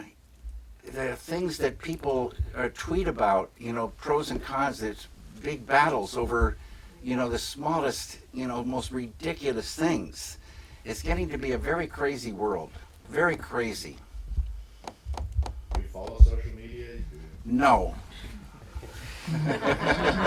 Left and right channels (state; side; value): identical; both; correlation 1.00